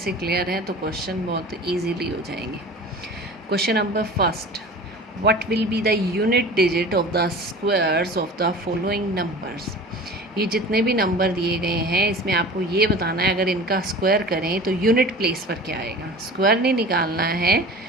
क्लियर है तो क्वेश्चन बहुत इजीली हो जाएंगे। Question number first, what will be the unit digit of the squares of the following numbers. ये जितने भी नंबर दिए गए हैं इसमें आपको ये बताना है, अगर इनका स्क्वायर करें तो यूनिट प्लेस पर क्या आएगा। स्क्वायर नहीं निकालना है,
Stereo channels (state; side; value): normal; both; correlation 0.38